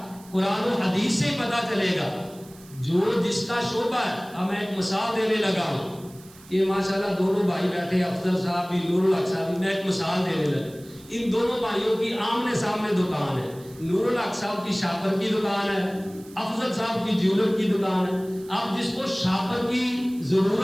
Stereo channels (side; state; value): right; noise; hiss, 23 dB below the sound